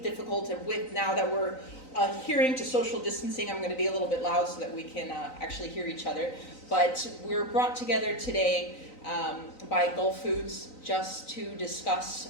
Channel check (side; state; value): right; late; 3.9 ms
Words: difficult, and with now that we're adhering to social distancing, I'm going to be a little bit loud so that we can actually hear each other. But we're brought together today by Gulf Foods just to